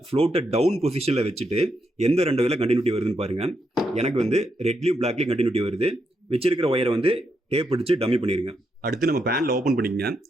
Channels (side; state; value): both; normal; correlation 0.81